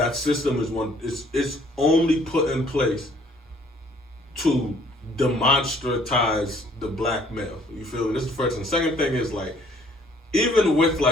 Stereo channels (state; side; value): normal; both; correlation 0.59